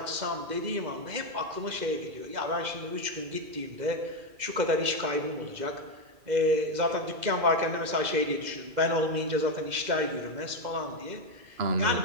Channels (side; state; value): left; late; 2.0 ms